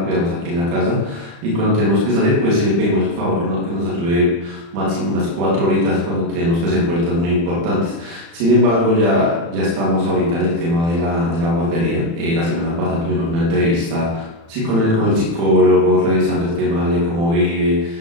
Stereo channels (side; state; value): left; late; 35 ms